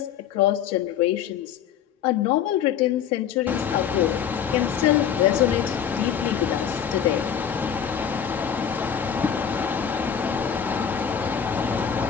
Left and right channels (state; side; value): quieter; right; 8.5 dB